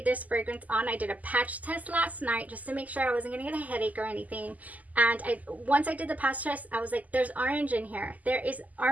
this fragrance on, I did a patch test last night just to make sure I wasn't going to get a headache or anything. And once I did the patch test, I was like, there's orange in here. There is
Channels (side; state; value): left; late; 0.077 ms